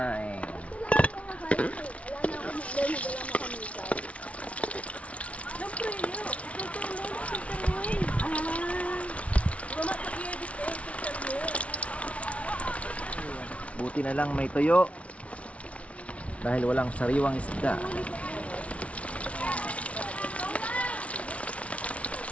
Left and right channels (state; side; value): late; right; 0.063 ms